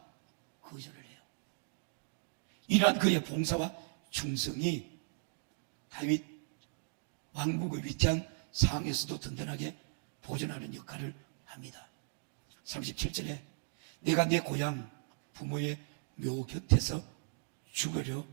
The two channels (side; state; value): left; silent; digital silence